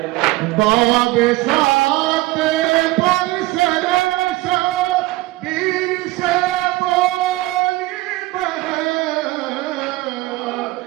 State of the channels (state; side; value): quieter; left; 19.2 dB